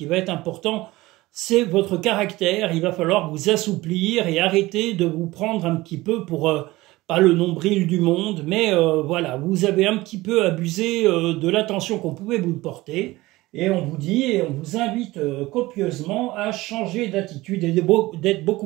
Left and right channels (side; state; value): left; quieter; 19.3 dB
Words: va être important, c'est votre caractère. Il va falloir vous assouplir et arrêter de vous prendre un petit peu pour pas le nombril du monde, mais voilà, vous avez un petit peu abusé de l'attention qu'on pouvait vous porter, et on vous dit, et on vous invite copieusement à changer d'attitude et d'être